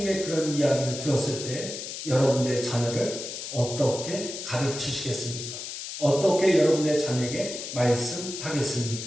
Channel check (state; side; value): noise; left; hiss, 8 dB below the sound